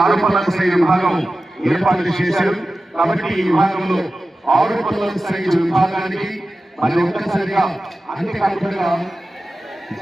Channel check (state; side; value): normal; both; correlation 0.94